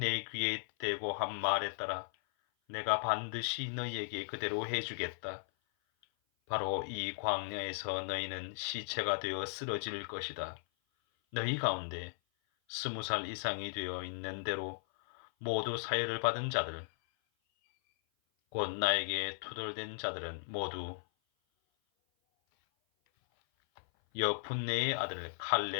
귀에 대고 한 말에 따라 내가 반드시 너희에게 그대로 해주겠다. 바로 이 광야에서 너희는 시체가 되어 쓰러질 것이다. 너희 가운데 20살 이상이 되어 있는 대로 모두 사혈을 받은 자들, 곧 나에게 투덜댄 자들은 모두 여푼네의 아들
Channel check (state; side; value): silent; right; 53 dB below the other